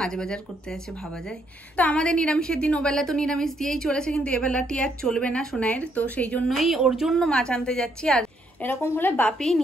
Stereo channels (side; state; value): both; normal; correlation 0.72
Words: বাজার করতে আছে, ভাবা যায়। তো আমাদের নিরামিষের দিন ওবেলা তো নিরামিষ দিয়েই চলেছে, কিন্তু এবেলাটি আর চলবে না সোনাইয়ের। তো সেই জন্যই ওর জন্য মাছ আনতে যাচ্ছি। আর এরকম হলে বাপি